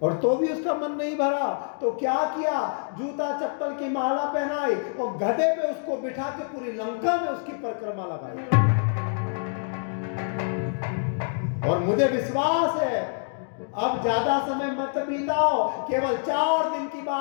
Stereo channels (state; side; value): silent; right; digital silence